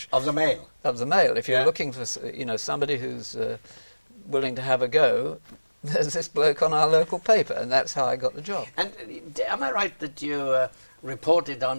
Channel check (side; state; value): both; inverted; correlation -1.00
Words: Of the Mail. of the Mail, if you're Yeah. looking for, you know, somebody who's willing to have a go, there's this bloke on our local paper, and that's how I got the job. And am I right that you reported